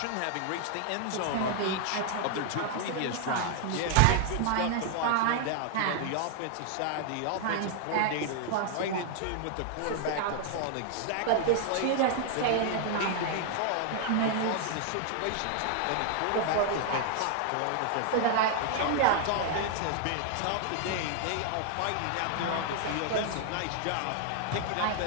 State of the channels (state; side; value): different; both; correlation 0.00